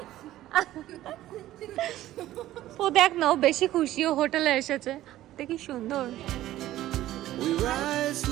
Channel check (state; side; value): quieter; left; 14.4 dB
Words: ও দেখ না, ও বেশি খুশি, ও হোটেলে এসেছে। দেখি সুন্দর। We rise